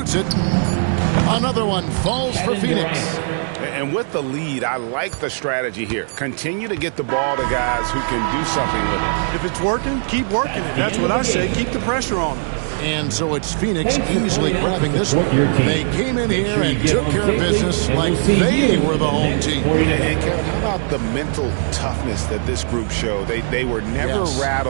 it. Another one falls for Phoenix. And with the lead, I like the strategy here. Continue to get the ball to guys who can do something with it. If it's working, keep working it. That's what I say. Keep the pressure on them. And so it's Phoenix easily grabbing this one. They came in here and took care of business like they were the home team. And Kevin, how about the mental toughness that this group showed? They were never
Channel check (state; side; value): silent; left; digital silence